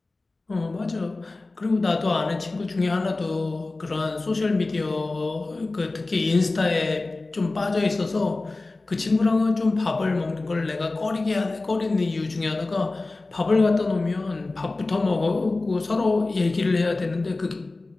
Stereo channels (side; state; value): right; quieter; 3.3 dB